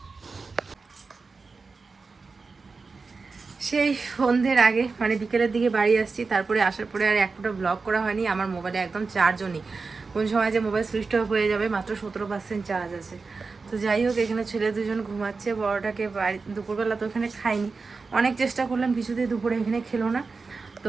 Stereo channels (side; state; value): left; quieter; 4.3 dB